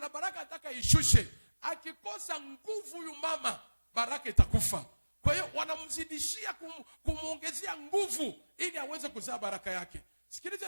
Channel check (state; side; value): inverted; both; correlation -1.00